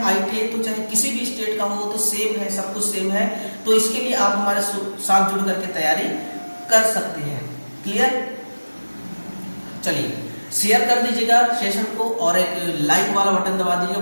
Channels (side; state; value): both; inverted; correlation -1.00